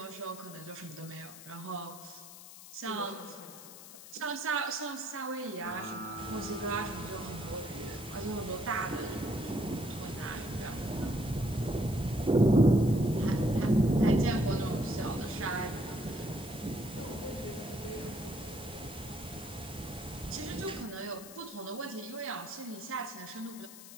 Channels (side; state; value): left; noise; hiss, 15 dB below the sound